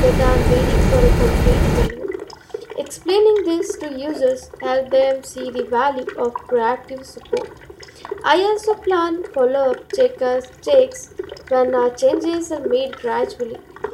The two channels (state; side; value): identical; both; correlation 1.00